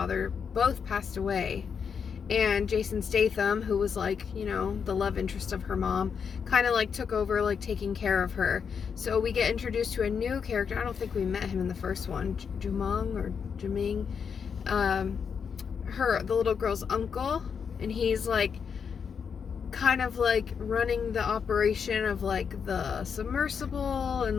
both passed away, and Jason Statham, who was like, you know, the love interest of her mom, kind of like took over like taking care of her. So we get introduced to a new character. I don't think we met him in the first one, Jumong or Juming, the little girl's uncle, and he's like kind of like running the operation of like the submersible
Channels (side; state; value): right; quieter; 6.6 dB